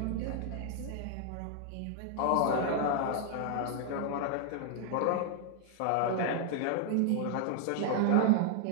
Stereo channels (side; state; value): both; different; correlation 0.00